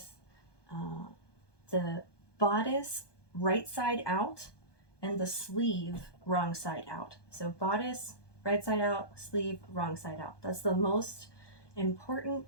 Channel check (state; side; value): late; right; 1.2 ms